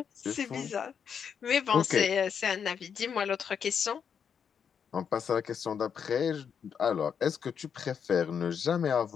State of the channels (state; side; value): quieter; right; 7.2 dB